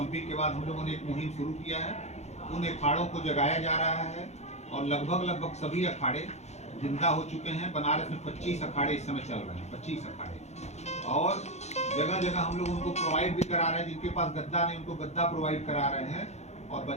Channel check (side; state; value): right; late; 0.32 ms